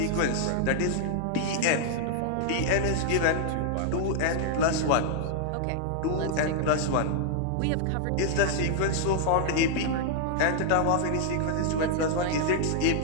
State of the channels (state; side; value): different; both; correlation 0.00